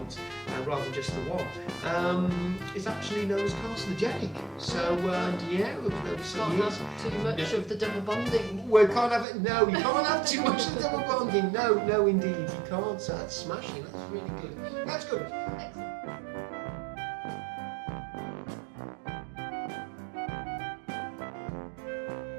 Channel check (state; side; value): drops out; left; at 9.2 s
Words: rather than just the one, is actually known as carcinogenic. So yeah, we've Can't have too much of the double bonding. We can't have it. No, you can't have too much of the double bonding. No, indeed, you can't. So that's smashing. That's really good. That's good. Excellent.